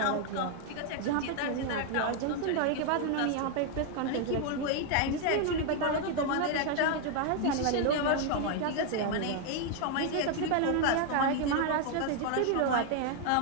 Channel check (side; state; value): both; different; correlation 0.00